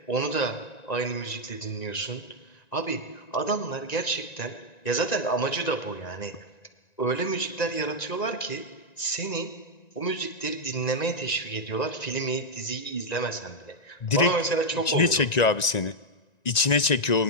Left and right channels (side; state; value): right; late; 1.9 ms